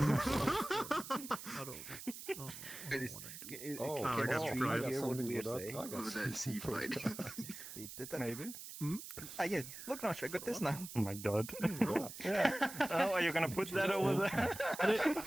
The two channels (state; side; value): noise; right; hiss, 11 dB below the sound